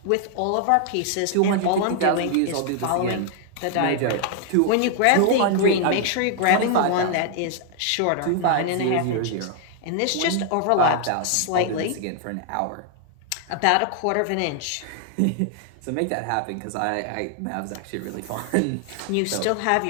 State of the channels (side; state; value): both; different; correlation 0.00